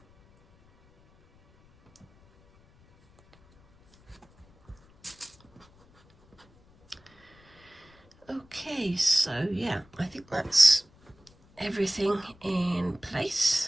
Okay, so yeah, I think that's everything in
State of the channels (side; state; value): left; noise; rumble, 29 dB below the sound